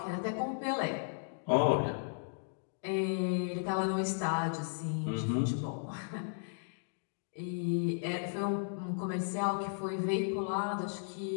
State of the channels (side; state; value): right; silent; digital silence